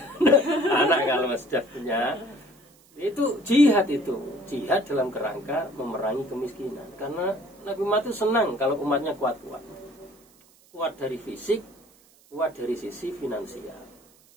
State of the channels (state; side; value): noise; right; hiss, 29 dB below the sound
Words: anak kalau sudah punya. Itu jihad itu. Jihad dalam kerangka memerangi kemiskinan. Karena Nabi Muhammad itu senang kalau umatnya kuat-kuat. Kuat dari fisik, kuat dari sisi finansial.